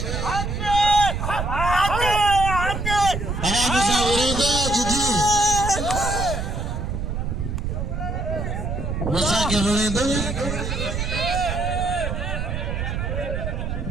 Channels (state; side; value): noise; right; rumble, 3 dB below the sound